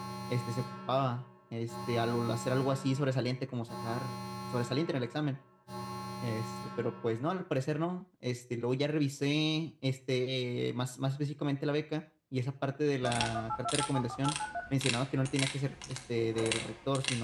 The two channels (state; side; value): identical; both; correlation 1.00